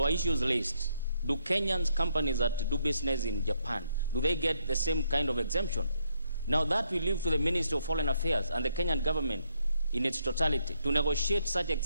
are issues raised, do Kenyan companies that do business in Japan, do they get the same kind of exemption? Now that we leave to the Ministry of Foreign Affairs and the Kenyan government in its totality to negotiate such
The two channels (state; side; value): inverted; both; correlation -0.74